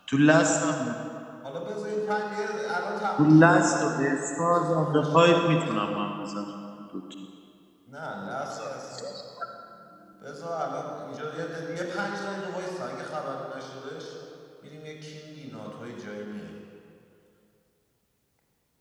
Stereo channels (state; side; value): identical; both; correlation 1.00